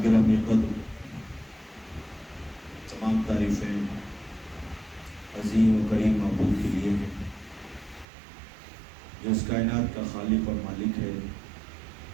گرامی قدر، تمام تعریفیں عظیم و کریم معبود کے لیے ہیں جو اس کائنات کا خالق اور مالک ہے.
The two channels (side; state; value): left; drops out; at 8.1 s